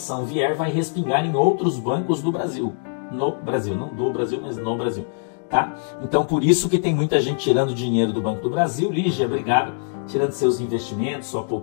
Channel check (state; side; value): silent; right; digital silence